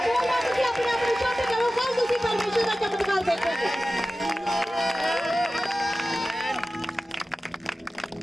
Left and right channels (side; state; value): both; normal; correlation 0.95